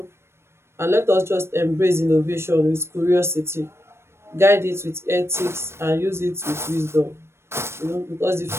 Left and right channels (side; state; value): left; late; 0.12 ms